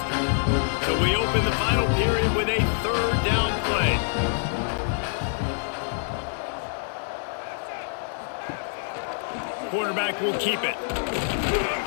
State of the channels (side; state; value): right; silent; digital silence